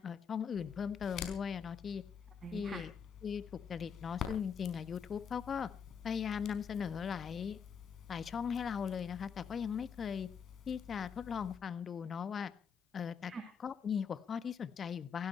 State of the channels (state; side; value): quieter; right; 6.8 dB